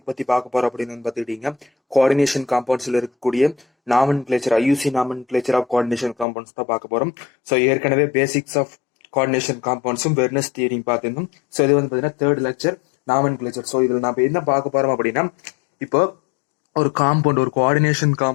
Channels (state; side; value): drops out; right; at 6.2 s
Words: பற்றி பார்க்க போகிறோம் அப்படின்னு பார்த்துக்கிட்டீங்க, கோஆர்டினேஷன் காம்பவுண்ட்ஸில் இருக்கக்கூடிய nomenclature, IUPAC nomenclature of coordination compounds தான் பார்க்க போகிறோம். ஸோ ஏற்கனவே பேசிக்ஸ் ஆஃப் கோஆர்டினேஷன் காம்பவுண்ட்ஸும் வெர்னஸ் தியரியும் பார்த்துருந்தோம். ஸோ இது வந்து பார்த்தீங்கன்னா தேர்ட் லெக்சர் நாமன்கிளேச்சர். ஸோ இதில் நம்ம என்ன பார்க்க போகிறோம் அப்படின்னா, இப்போ ஒரு காம்பவுண்ட், ஒரு கோஆர்டினேஷன்